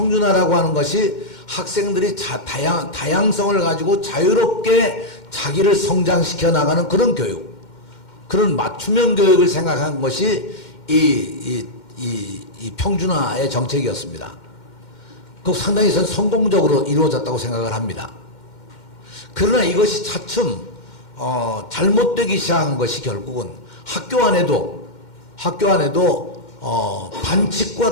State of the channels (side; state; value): right; late; 2.1 ms